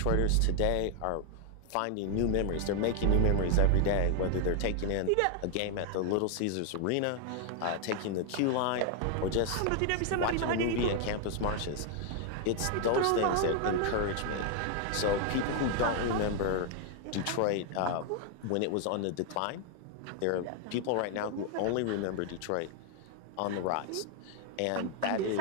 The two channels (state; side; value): different; both; correlation 0.00